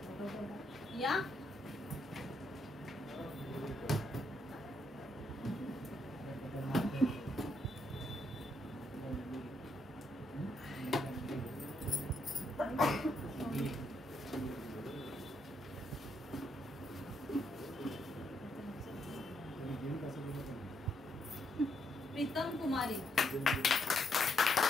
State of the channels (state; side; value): normal; both; correlation 0.76